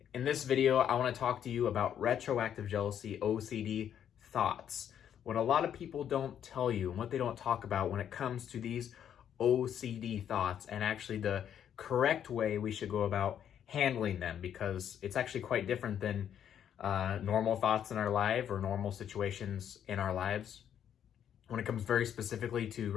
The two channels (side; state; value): right; quieter; 9.4 dB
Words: In this video, I want to talk to you about retroactive jealousy, OCD thoughts. What a lot of people don't tell you and what they don't talk about when it comes to these OCD thoughts and actually the correct way we should go about handling them, because it's actually quite different than normal thoughts in our life or normal situations in our lives. When it comes very specifically to